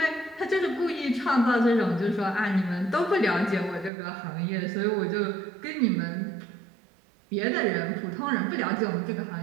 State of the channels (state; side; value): drops out; left; at 3.9 s